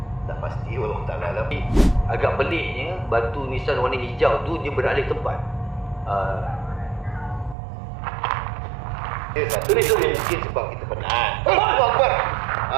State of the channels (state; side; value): drops out; left; at 7.6 s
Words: tak pasti Allah Ta'ala lah. Agak peliknya batu nisan warna hijau tu dia beralih tempat. Satu ni mungkin sebab kita penat. Allahu Akbar.